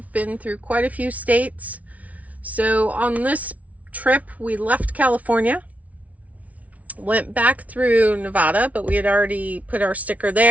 been through quite a few states. So on this trip, we left California, went back through Nevada, but we had already put our sticker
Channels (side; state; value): left; late; 0.069 ms